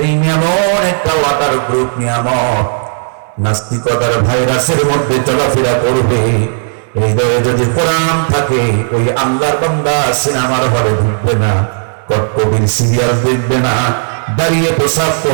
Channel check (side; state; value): left; silent; digital silence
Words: এমন একটা ওয়াটার প্রুফ নিয়ামত, নাস্তিকতার ভাইরাসের মধ্যে চলাফেরা করবে। হৃদয়ে যদি কোরআন থাকে, ওই আল্লাহর বান্দা সিনেমার হলে ঢুকবে না, কটকটির সিরিয়াল দেখবে না, দাঁড়িয়ে প্রসাব